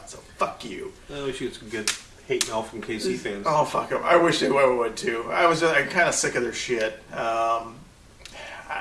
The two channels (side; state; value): both; identical; correlation 1.00